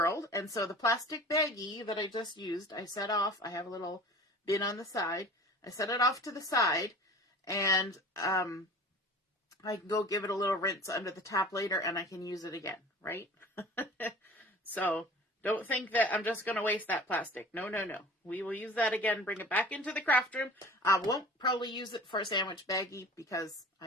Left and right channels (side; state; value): both; normal; correlation 0.41